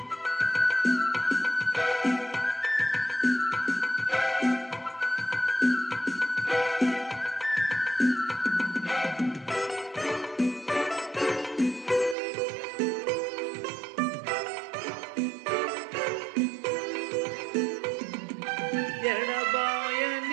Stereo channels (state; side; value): drops out; left; at 12.2 s